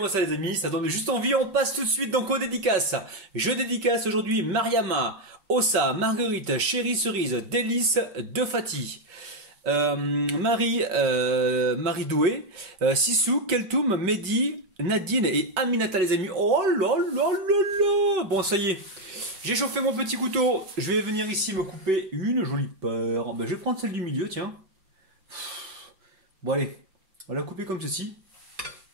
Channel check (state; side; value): late; left; 5.3 ms